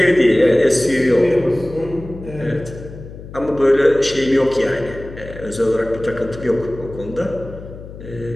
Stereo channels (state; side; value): noise; left; hum, 14 dB below the sound